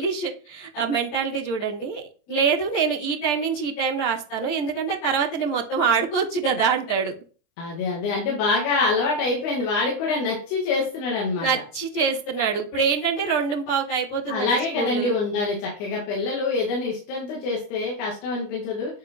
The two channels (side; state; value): right; late; 24 ms